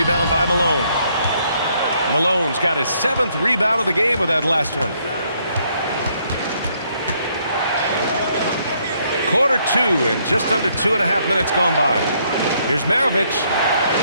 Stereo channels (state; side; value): inverted; both; correlation -0.70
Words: by Malone. Malone's got his 7th rebound of the game with that last one. Quarter 2 and just under 2.5 minutes gone by. Here's Maravich.